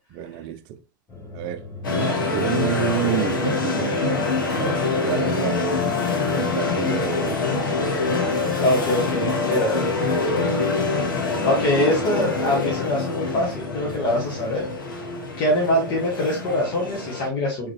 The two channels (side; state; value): both; normal; correlation 0.00